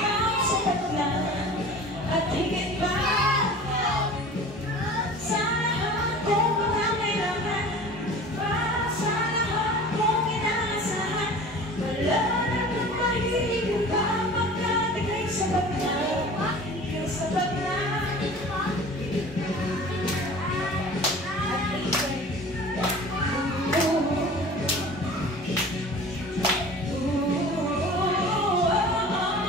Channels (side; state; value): both; normal; correlation 0.41